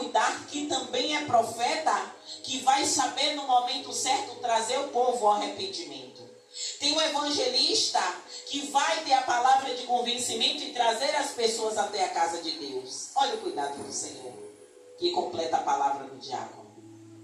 que também é profeta, que vai saber no momento certo trazer o povo ao arrependimento. Tem o evangelista que vai ter a palavra de convencimento e trazer as pessoas até a casa de Deus. Olha o cuidado do Senhor, que completa a palavra do diácono.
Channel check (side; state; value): both; identical; correlation 1.00